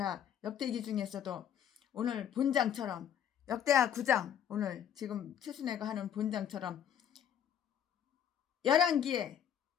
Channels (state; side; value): quieter; right; 9.3 dB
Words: 역대기 중에서도 오늘 본장처럼 역대하 9장 오늘 지금 최순애가 하는 본장처럼 11기에